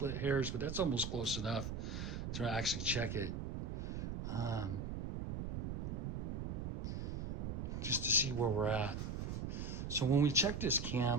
hairs, but that's almost close enough to actually check it. Just to see where we're at. So when we check this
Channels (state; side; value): noise; right; rumble, 3 dB below the sound